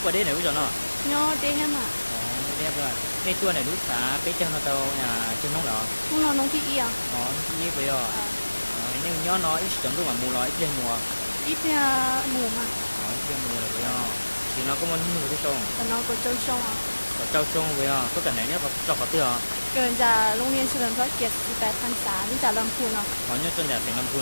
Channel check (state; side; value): inverted; both; correlation -1.00